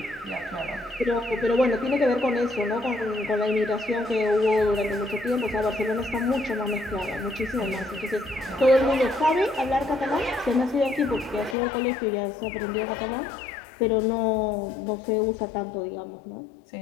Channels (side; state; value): right; drops out; at 11.6 s